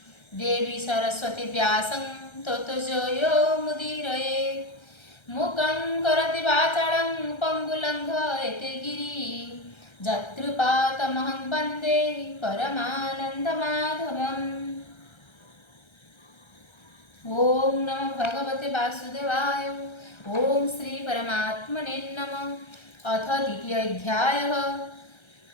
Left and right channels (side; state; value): right; late; 1.3 ms